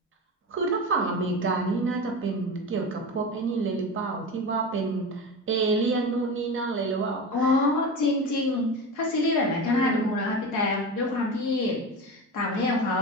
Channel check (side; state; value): both; normal; correlation 0.26